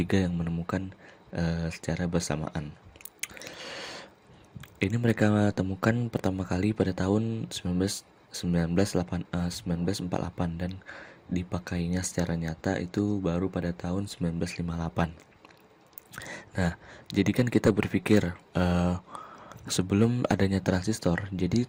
yang menemukan secara bersamaan. Ini mereka temukan pertama kali pada tahun 1948 dan dipakainya secara nyata itu baru pada tahun 1958. Nah, jadi kan kita berpikir sebelum adanya transistor,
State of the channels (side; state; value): both; identical; correlation 1.00